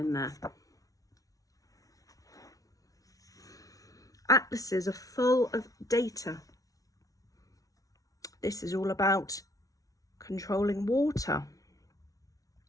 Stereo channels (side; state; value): right; late; 0.17 ms